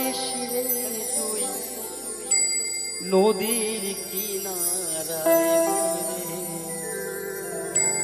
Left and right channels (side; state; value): left; noise; hum, 26 dB below the sound